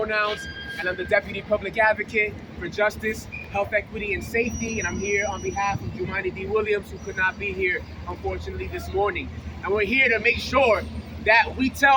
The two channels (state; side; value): identical; both; correlation 1.00